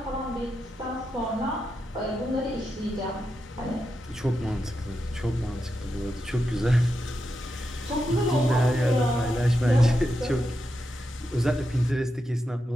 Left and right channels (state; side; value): normal; both; correlation 0.87